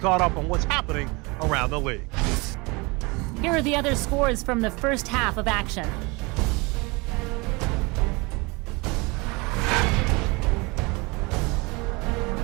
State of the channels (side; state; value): left; quieter; 26.5 dB